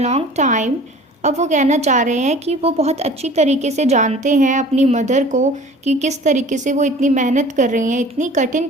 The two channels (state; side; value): normal; both; correlation 0.45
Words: time. अब वो कहना चाह रहे हैं कि वो बहुत अच्छी तरीके से जानते हैं अपनी मदर को कि किस तरीके से वो इतनी मेहनत कर रही हैं, इतनी कठिन